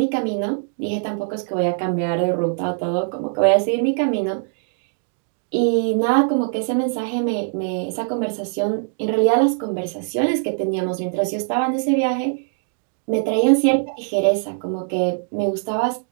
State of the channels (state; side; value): silent; left; digital silence